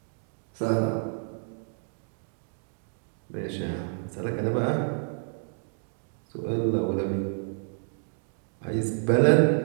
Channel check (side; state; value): left; silent; 58 dB below the other